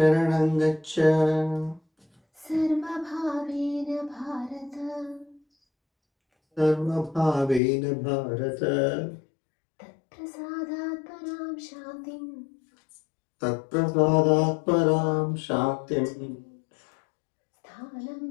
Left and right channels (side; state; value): right; drops out; at 7.6 s